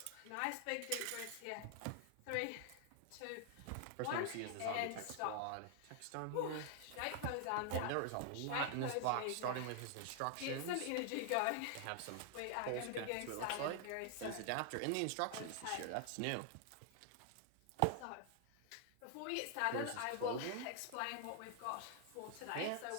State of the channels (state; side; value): different; both; correlation 0.00